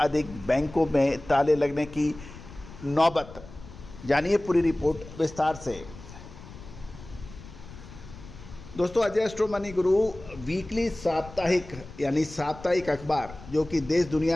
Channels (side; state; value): left; noise; rumble, 16 dB below the sound